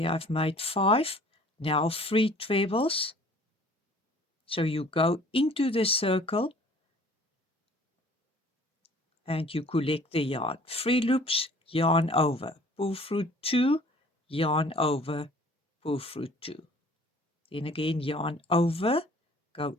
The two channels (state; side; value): normal; both; correlation 0.51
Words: I've made 5. Now 3 trebles. So you go into the circle and you collect the yarn. 3 loops, yarn over, pull through 2, yarn over, pull through 2. Then again, yarn over, go